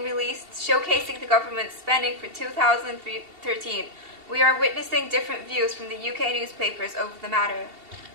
released showcasing the government's spending for 2013. We are witnessing different views from the UK newspapers over the matter.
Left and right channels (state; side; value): late; left; 2.7 ms